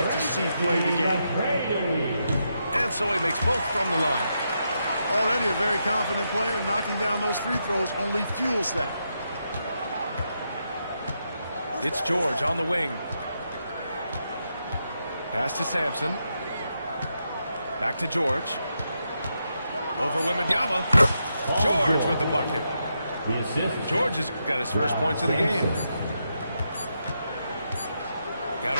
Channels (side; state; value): both; inverted; correlation -0.83